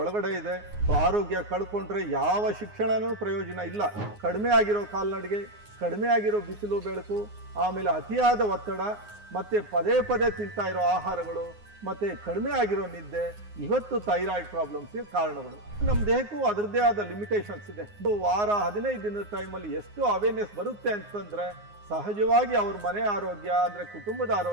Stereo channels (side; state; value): left; late; 9.6 ms